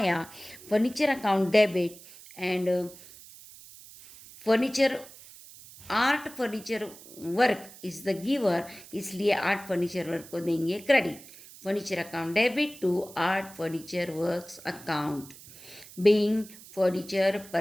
furniture account debit, and furniture art furniture work is the giver, इसलिए आर्ट फर्नीचर वर्क को देंगे credit. Furniture account debit to art furniture works account being furniture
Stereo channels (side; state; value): right; noise; hiss, 19 dB below the sound